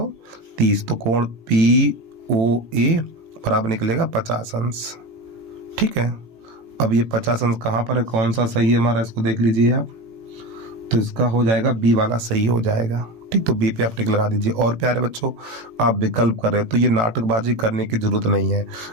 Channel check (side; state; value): left; late; 18 ms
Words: तो कोण POA बराबर निकलेगा 50 अंश, ठीक है। अब ये 50 अंश कहाँ पर है, कौन सा सही है हमारा, इसको देख लीजिए आप। तो इसका हो जाएगा बी वाला सही हो जाएगा, ठीक। तो बी पे आप टिक लगा दीजिए। और प्यारे बच्चों आप विकल्प कर रहे हो तो ये नाटकबाजी करने की जरूरत नहीं है।